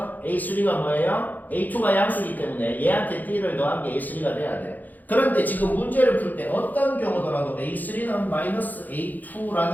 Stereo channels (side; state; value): right; late; 0.083 ms